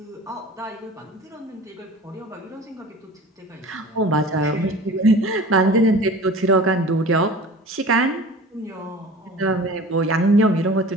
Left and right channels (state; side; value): normal; both; correlation 0.40